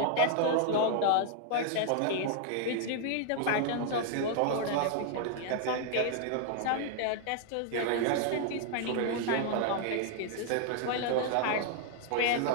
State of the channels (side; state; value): both; different; correlation 0.00